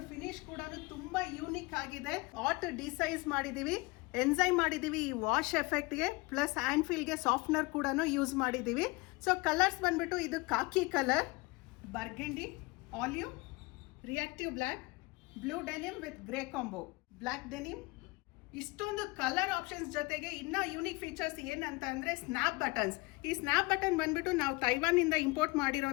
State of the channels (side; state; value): right; quieter; 24.8 dB